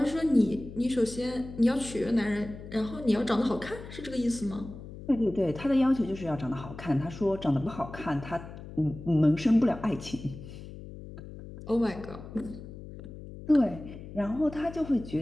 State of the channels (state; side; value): noise; left; hum, 13 dB below the sound